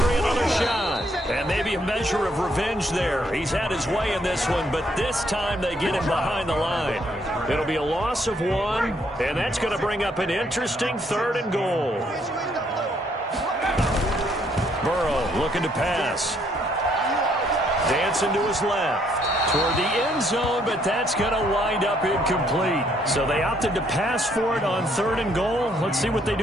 another shot. And maybe a measure of revenge there. He's had his way in this one, but this time they get him behind the line. It'll be a loss of 1, and that's going to bring up an interesting third and goal. Burrow looking to pass. Dancing to his left. Toward the end zone, but that's going to wind up incomplete. So they opted to pass for it on third and goal. Let's see what they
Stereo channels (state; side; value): normal; both; correlation 0.69